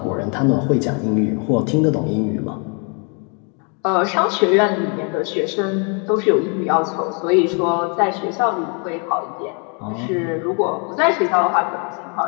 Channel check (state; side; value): quieter; right; 36.8 dB